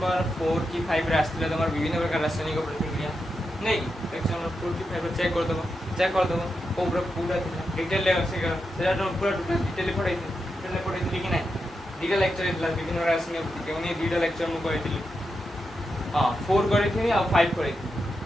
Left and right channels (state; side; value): normal; both; correlation 0.87